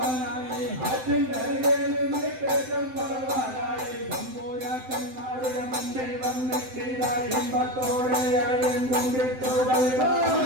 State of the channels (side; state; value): left; late; 7.8 ms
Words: ആറ്റിനരികിൽ നിന്ന് തെക്കം പറവാനായി തമ്പൂരാക്കന്മാരുടെ മുന്നിൽ വന്നിട്ടിതായി ഇമ്പത്തോടെ അഴയും കൊണ്ടിട്ടു